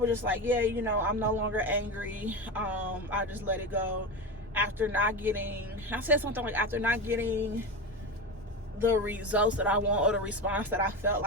just like, yeah, you know, I'm no longer angry. I just let it go. After not getting, I said something like, after not getting the results that I want, or the response that I felt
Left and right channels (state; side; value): normal; both; correlation 0.21